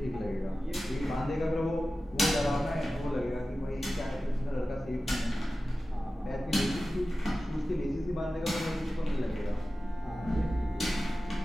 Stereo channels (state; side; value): normal; both; correlation 0.95